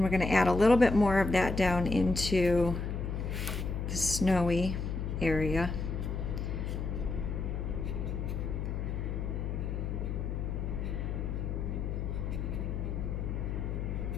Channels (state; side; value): noise; left; hum, 3 dB below the sound